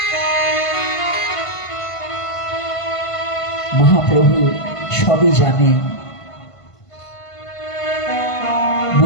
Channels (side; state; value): right; late; 1.5 ms